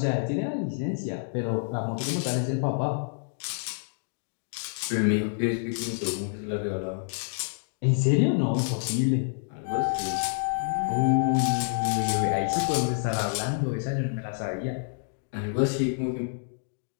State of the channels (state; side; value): silent; right; digital silence